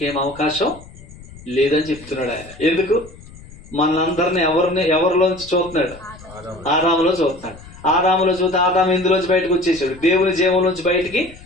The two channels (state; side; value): noise; left; rumble, 19 dB below the sound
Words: అవకాశం లేదని చెప్తున్నాడు ఆయన. ఎందుకు? మనందరిని ఎవరిలోంచి చూస్తున్నాడు? ఆదాములో చూస్తున్నాడు. ఆదాములో చూస్తే ఆదాము ఇందులోంచి బయటకు వచ్చేసాడు, దేవుని జీవంలోంచి బయటికి